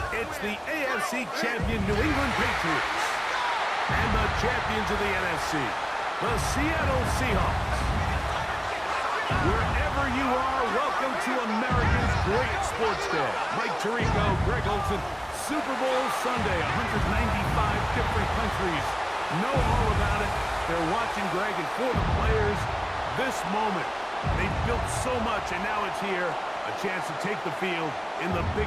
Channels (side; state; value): both; identical; correlation 1.00